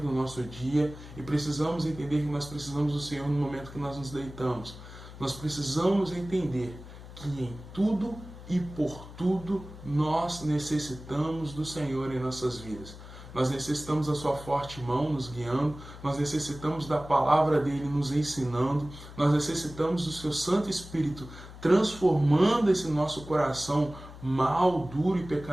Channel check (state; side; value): noise; left; hum, 15 dB below the sound